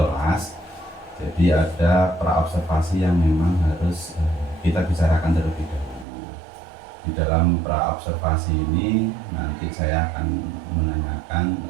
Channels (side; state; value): left; drops out; at 6.1 s